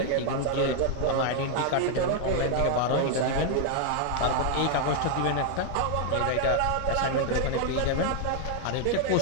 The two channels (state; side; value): different; both; correlation 0.00